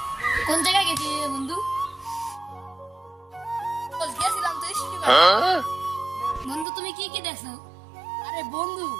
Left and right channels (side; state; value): left; drops out; at 6.7 s